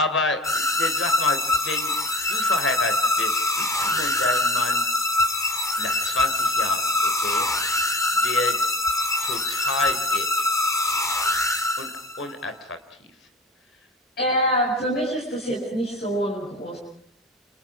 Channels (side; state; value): both; normal; correlation 0.37